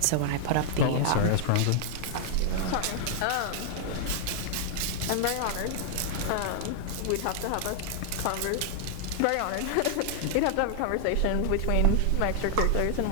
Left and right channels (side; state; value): both; different; correlation -0.01